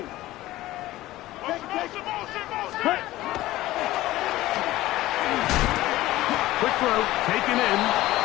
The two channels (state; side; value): quieter; right; 16.5 dB